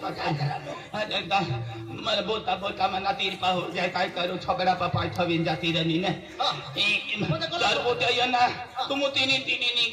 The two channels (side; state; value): both; identical; correlation 1.00